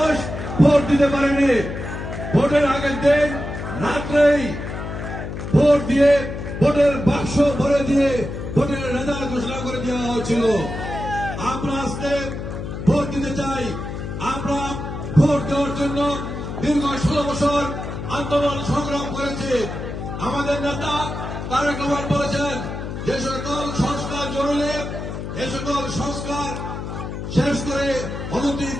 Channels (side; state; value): left; noise; hum, 7 dB below the sound